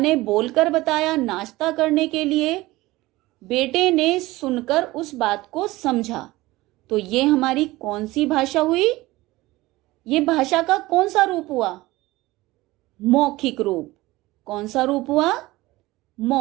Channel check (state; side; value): quieter; left; 19.2 dB